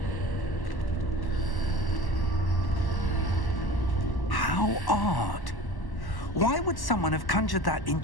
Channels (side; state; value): right; late; 1.1 ms